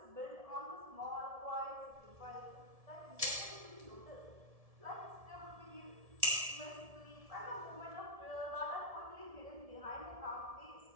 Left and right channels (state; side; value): late; left; 1.7 ms